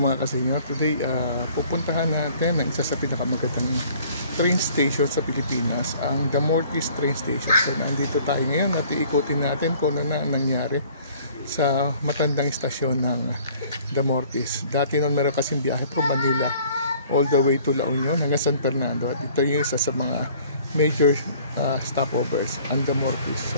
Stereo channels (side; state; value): both; inverted; correlation -0.54